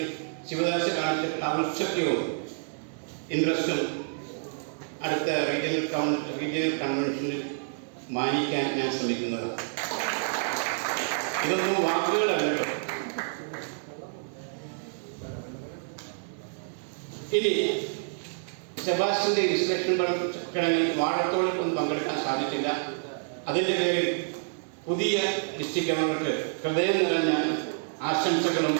ശിവദാസ് കാണിച്ചിട്ടുള്ള ഔത്സുക്യവും ഇൻട്രസ്റ്റും അടുത്ത റീജിയണൽ കൺവെൻഷനിൽ മാനിക്കാൻ ഞാൻ ശ്രമിക്കുന്നതാണ്. ഇതൊന്നും വാക്കുകളല്ലോ. ഇനി സെബാസ്റ്റ്യന്റെ ഇൻസ്ട്രക്ഷൻ ചടങ്ങിൽ വാഴത്തോടൊപ്പം പങ്കെടുക്കാൻ സാധിച്ചില്ല. അതിൻ്റെ പേരിൽ പുതിയ ഡിസ്ട്രിക്ട് ഗവർണർക്ക് ഹൃദയം നിറഞ്ഞ ആശംസകളും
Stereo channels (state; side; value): silent; left; digital silence